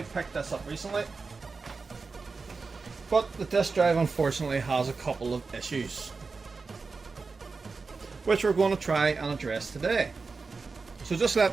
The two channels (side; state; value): left; quieter; 4.4 dB